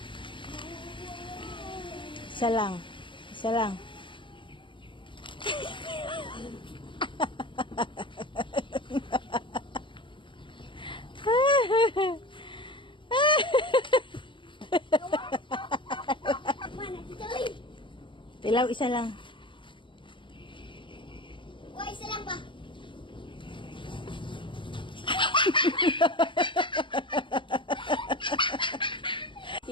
Isa lang. Isa lang. Tilaw, isa lang. Wah, isa lang ba?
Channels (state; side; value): late; right; 0.24 ms